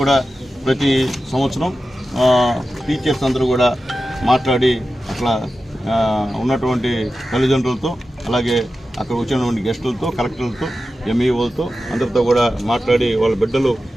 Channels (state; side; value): normal; both; correlation 0.93